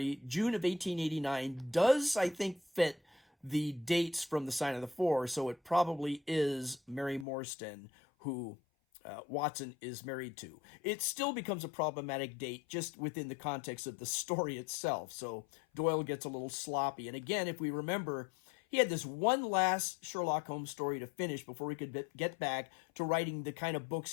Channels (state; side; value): drops out; right; at 7.2 s